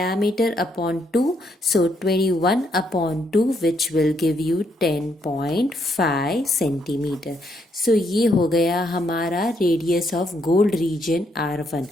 upon 2, so 21 upon 2 which will give you 10.5 centimetre. ये हो गया हमारा radius of gold reason r1।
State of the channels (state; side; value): normal; both; correlation 0.74